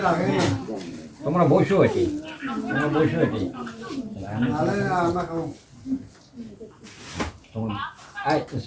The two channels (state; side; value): identical; both; correlation 1.00